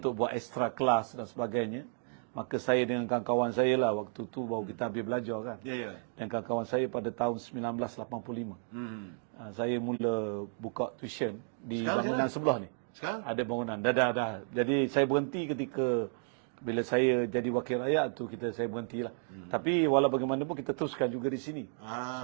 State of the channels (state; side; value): silent; left; 56 dB below the other